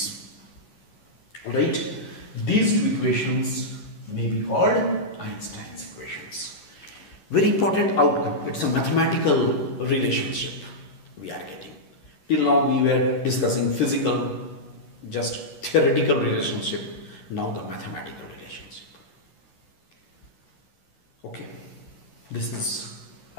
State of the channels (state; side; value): late; right; 11 ms